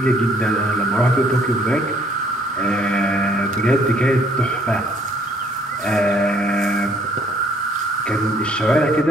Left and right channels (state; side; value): normal; both; correlation 0.62